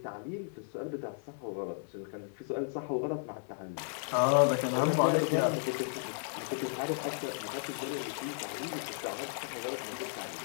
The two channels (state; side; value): silent; right; 55 dB below the other